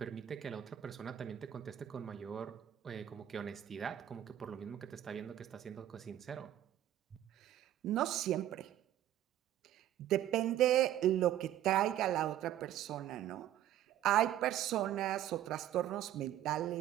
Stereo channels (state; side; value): quieter; left; 12.1 dB